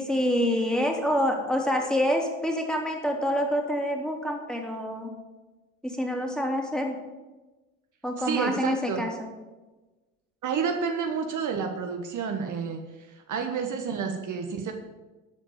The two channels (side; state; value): both; normal; correlation 0.55